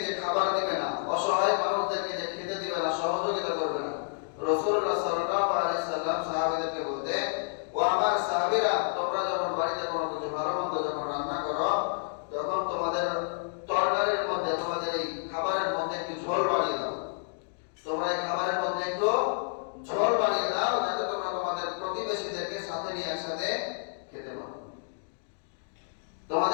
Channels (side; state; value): right; silent; digital silence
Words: যে খাবার দিবে না, অসহায় মানুষদেরকে যে খেতে দিবে না, সহযোগিতা করবে না, রাসূলুল্লাহ সাল্লাল্লাহু আলাইহি সাল্লাম সাহাবীদেরকে বলতে, ও আমার সাহাবীরা, তোমরা যখন বাড়িতে কোনো কিছু ভালো মন্দ যখন রান্না করো, তখন তোমাদের তরকারির মধ্যে, তোমাদের এই খাবারের মধ্যে একটু ঝোল বাড়িয়ে দাও, তোমরা এই খাবারের মধ্যে একটু ঝোল বাড়িয়ে দাও, যাতে তোমরা তোমাদের প্রতিবেশীদেরকে সাথে নিয়ে একসাথে খেতে পারো।